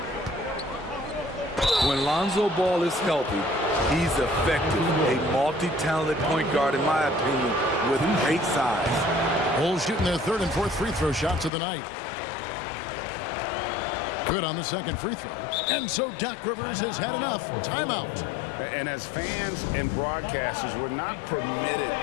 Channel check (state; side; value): drops out; right; at 11.5 s